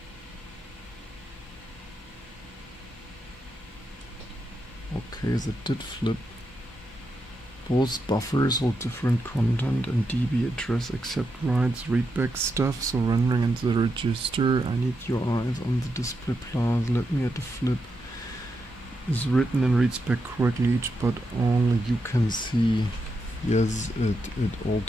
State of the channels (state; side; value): normal; both; correlation 0.84